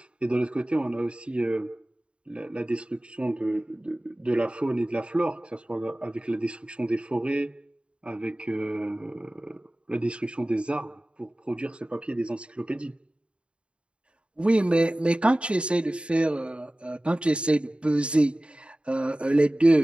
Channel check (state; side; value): late; left; 0.057 ms